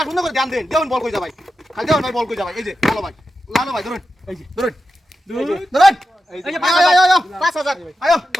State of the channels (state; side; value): normal; both; correlation 0.90